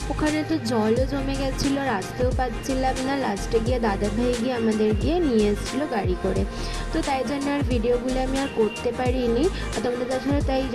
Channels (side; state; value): both; identical; correlation 1.00